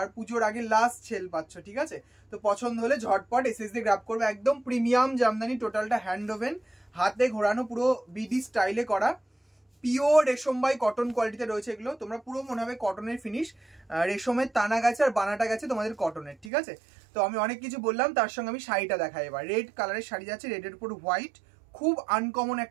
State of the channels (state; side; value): drops out; left; at 16.5 s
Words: পুজোর আগে লাস্ট সেল পাচ্ছ, ঠিক আছে। তো পছন্দ হলে ঝটপট এসএস দিয়ে গ্র্যাব করবে। একদম প্রিমিয়াম জামদানি, টোটালটা হ্যান্ড ওভেন, হাতে ঘোরানো, পুরো বিডি স্টাইলে করা, পিওর রেশম বাই কটন কোয়ালিটিতে রয়েছে এগুলো। তোমরা পুরো মনে হবে কটনের ফিনিশ, রেশমের টানা গেছে আর বানাটা গেছে তোমাদের কটনের, ঠিক আছে। তো আমি অনেক কিছু বললাম, তার সঙ্গে আমি শাড়িটা দেখাই এবার। রেড কালারের শাড়ি যাচ্ছে, রেডের উপর হোয়াইট, খুব আনকমন